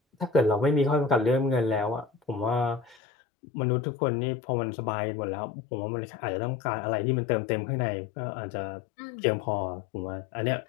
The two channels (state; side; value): drops out; right; at 3.0 s